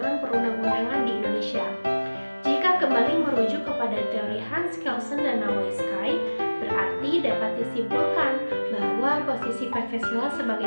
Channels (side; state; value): both; inverted; correlation -1.00